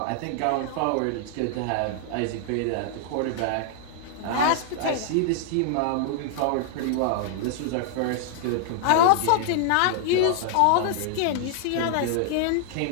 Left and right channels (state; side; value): different; both; correlation 0.00